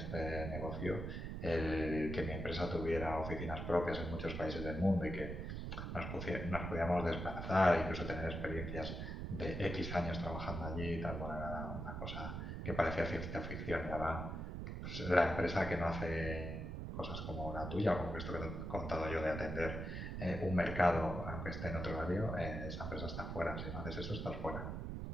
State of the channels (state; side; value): noise; right; rumble, 5 dB below the sound